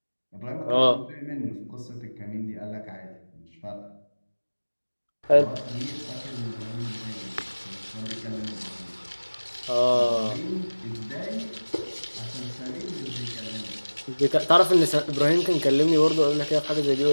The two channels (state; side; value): inverted; both; correlation -1.00